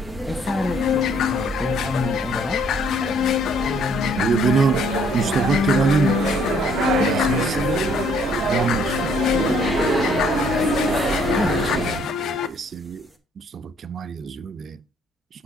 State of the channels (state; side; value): normal; both; correlation 0.64